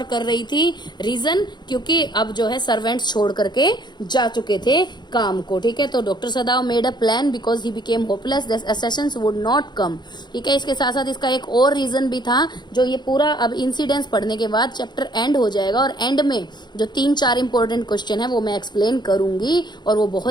कर रही थी. रीजन, क्योंकि अब जो है सर्वेंट्स छोड़ करके जा चुके थे काम को. ठीक है, तो doctor Sadao made a plan because he became hopeless that Assassin's would not come. ठीक है, इसके साथ साथ इसका एक और रीजन भी था जो ये पूरा अब इंसिडेंट्स पढ़ने के बाद चैप्टर एंड हो जाएगा और एंड में जो 3-4 इंपॉर्टेंट क्वेश्चन है वो मैं एक्सप्लेन करूंगी और वो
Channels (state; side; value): late; right; 0.21 ms